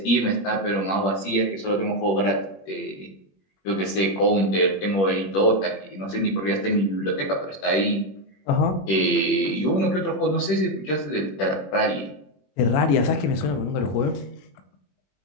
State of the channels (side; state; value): right; late; 21 ms